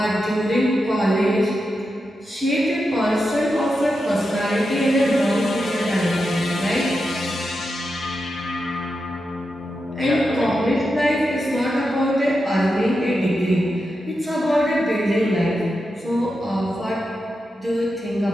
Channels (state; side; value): normal; both; correlation 0.88